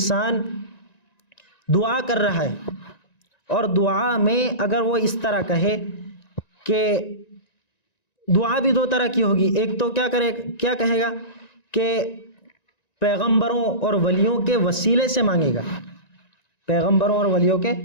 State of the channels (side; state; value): right; late; 1.9 ms